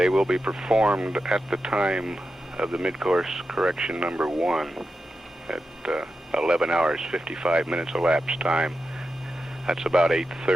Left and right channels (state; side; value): normal; both; correlation 0.90